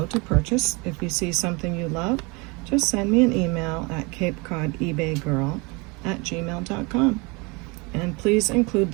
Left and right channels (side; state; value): left; quieter; 28.1 dB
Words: to purchase. If you see something you love, just send me an email at CapeCodEbayGirl@gmail.com. And please include